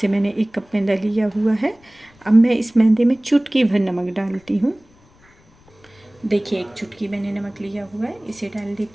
मैंने 1 कप मैदा लिया हुआ है। अब मैं इस मैदे में चुटकी भर नमक डालती हूँ। देखिए, 1 चुटकी मैंने नमक लिया हुआ है, इसे डाल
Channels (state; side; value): noise; left; rumble, 30 dB below the sound